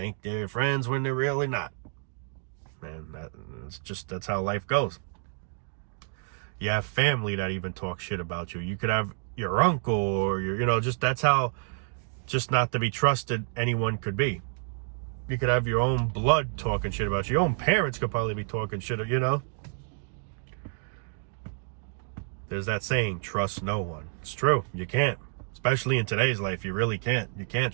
they're friends when they're really not. Man, that's how life goes. You have family that even talk shit about you. You could have your uncle or that's how just not to be trusted anyone could be. You could have your own blood talking shit about you. Your own parents could probably be talking shit, There's that saying, trust no one. It's true. You can't. Especially in today's life, you really can't. You can't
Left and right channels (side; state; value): left; silent; 59 dB below the other